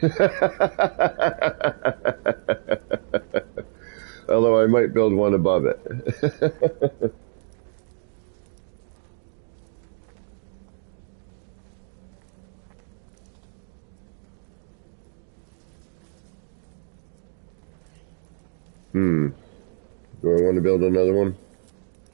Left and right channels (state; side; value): silent; left; digital silence